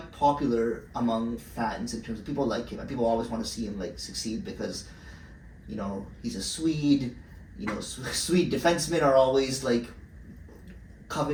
popular among fans in terms of people like him, and people always want to see him like succeed because, you know, he's a Swede. You know, Swede defensemen are always like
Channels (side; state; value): both; identical; correlation 1.00